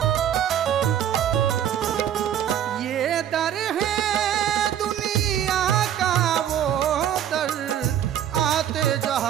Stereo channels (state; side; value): quieter; left; 10.2 dB